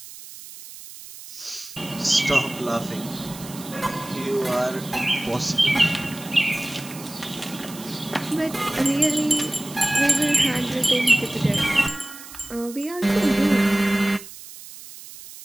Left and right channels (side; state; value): right; noise; hiss, 15 dB below the sound